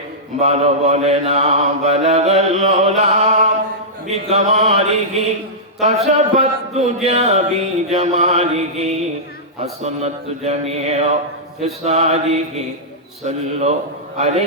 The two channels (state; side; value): normal; both; correlation -0.13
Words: ভালো বলে না বালাগাল উলা বিকামালিহি কাশাফাত দুজা বিজামালিহি হাসানাত জামিউ ফিসালিহি সাল্লু